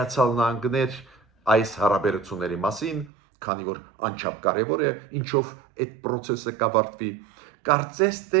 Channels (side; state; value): left; drops out; at 3.1 s